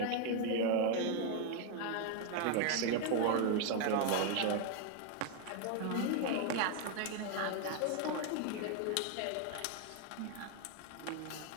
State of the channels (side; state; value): both; different; correlation 0.01